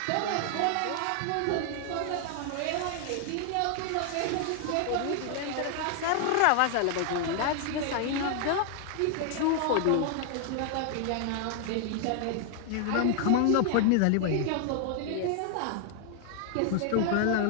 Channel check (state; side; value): different; both; correlation 0.00